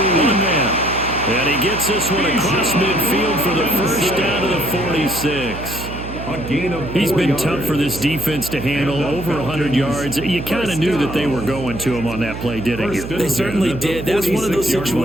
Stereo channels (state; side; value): noise; right; hum, 9 dB below the sound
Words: man. And he gets this one across midfield for the 1st down to the 46. He's been tough for this defense to handle, over 100 yards. You kind of knew that they were going to him on that play, didn't you? They certainly did. That's one of those